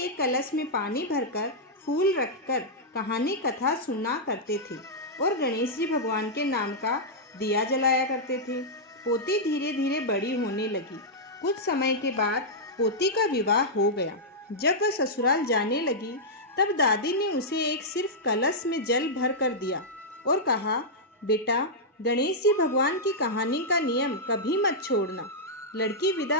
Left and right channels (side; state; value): both; normal; correlation -0.08